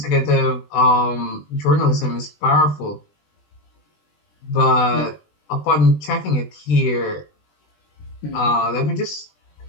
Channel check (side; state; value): right; late; 20 ms